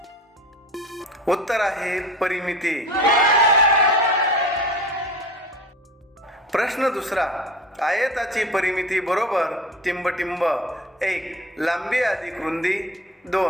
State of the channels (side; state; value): both; normal; correlation 0.37